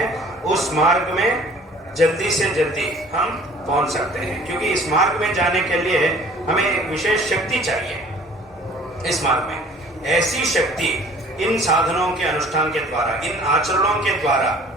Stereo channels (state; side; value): normal; both; correlation 0.51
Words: उस मार्ग में जल्दी से जल्दी हम पहुंच सकते हैं, क्योंकि इस मार्ग में जाने के लिए हमें एक विशेष शक्ति चाहिए। इस मार्ग में ऐसी शक्ति इन साधनों के अनुष्ठान के द्वारा, इन आचरणों के द्वारा